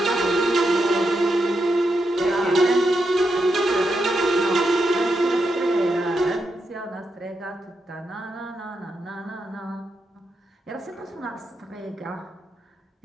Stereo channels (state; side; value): normal; both; correlation 0.84